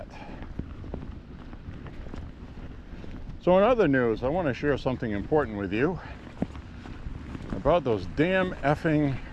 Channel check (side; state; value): both; identical; correlation 1.00